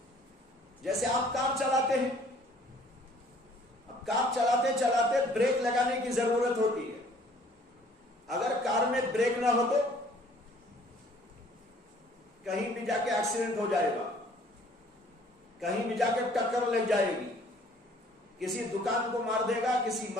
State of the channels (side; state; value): both; normal; correlation 0.56